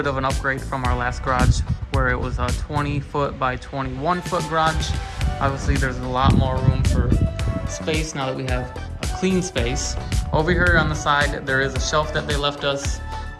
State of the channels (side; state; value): both; identical; correlation 1.00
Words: of an upgrade from our last garage where it was a 20 foot by 21 foot garage. Obviously there's a lot more room for space now that we have a clean space. Over here on the side there is a shelf that they left us.